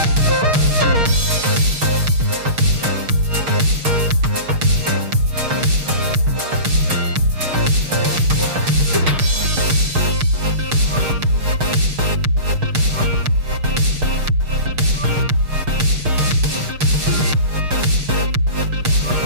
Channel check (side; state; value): left; late; 6.5 ms